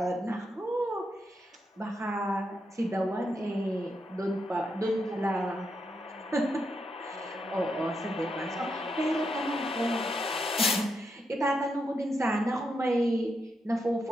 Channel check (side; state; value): both; normal; correlation 0.82